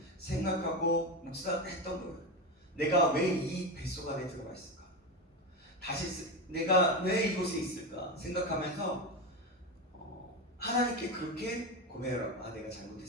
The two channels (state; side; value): normal; both; correlation 0.17